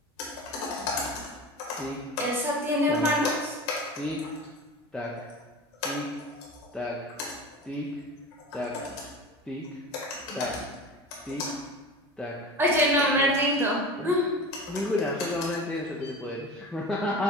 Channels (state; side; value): normal; both; correlation 0.32